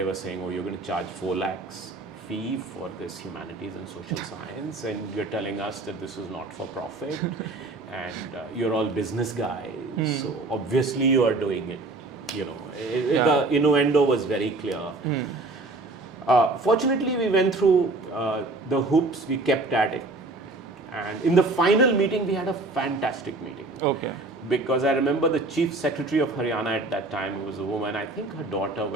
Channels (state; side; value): quieter; left; 3.1 dB